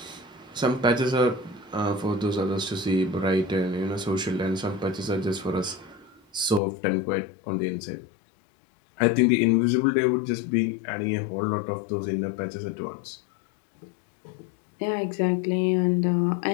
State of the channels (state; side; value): drops out; right; at 6.6 s